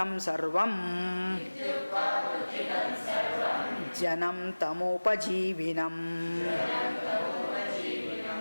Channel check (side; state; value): both; inverted; correlation -1.00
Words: सर्वं जनं तमोपजीविनम्